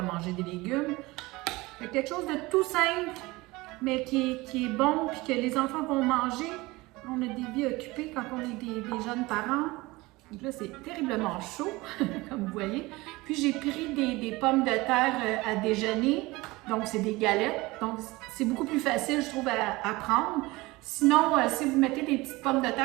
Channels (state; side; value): quieter; left; 21.5 dB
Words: manger des légumes. C'est quelque chose de tout simple, mais qui est bon, puis que les enfants vont manger. On a des vies occupées quand on est des jeunes parents. Donc là, c'est terriblement chaud, comme vous voyez. Puis j'ai pris des pommes de terre à déjeuner, donc c'est des galettes. Donc c'est beaucoup plus facile, je trouve, à prendre. Sinon, si vous mettez des petites pommes de